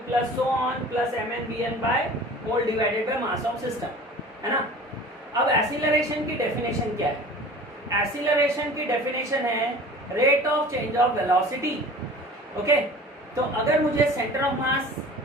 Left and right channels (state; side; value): normal; both; correlation 0.42